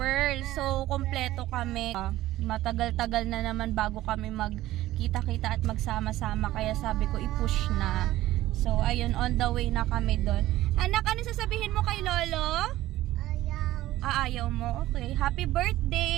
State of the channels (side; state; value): left; quieter; 15.5 dB